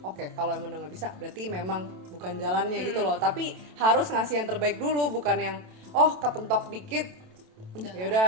oke. Kalau emang udah nggak bisa, berarti memang bukan jalannya gitu loh. Tapi harus ngasih yang terbaik dulu, bukan yang kepentok dikit ya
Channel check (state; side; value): late; left; 27 ms